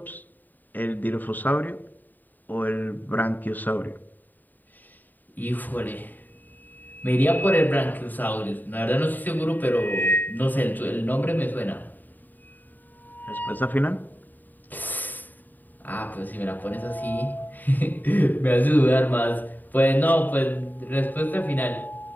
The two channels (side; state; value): right; late; 0.087 ms